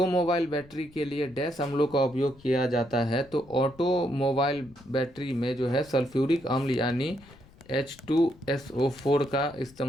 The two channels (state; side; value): noise; left; rumble, 24 dB below the sound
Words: बैटरी के लिए डैश अम्लों का उपयोग किया जाता है? तो ऑटोमोबाइल बैटरी में जो है सल्फ्यूरिक अम्ल यानी H2SO4 का